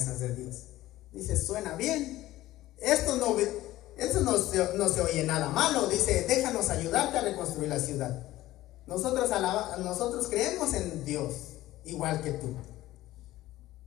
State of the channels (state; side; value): quieter; right; 15.9 dB